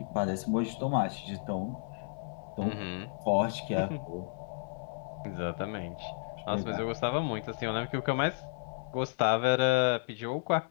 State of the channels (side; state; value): right; silent; 56 dB below the other